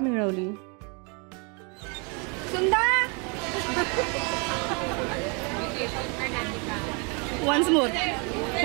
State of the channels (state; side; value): quieter; left; 33.5 dB